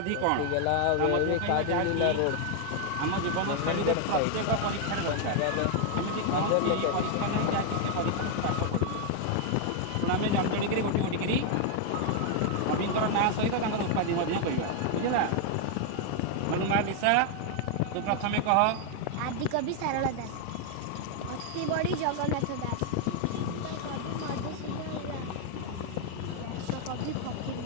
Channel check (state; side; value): different; both; correlation 0.00